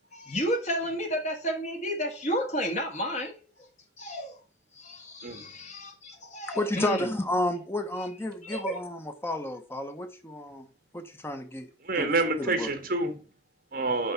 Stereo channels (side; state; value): both; normal; correlation 0.31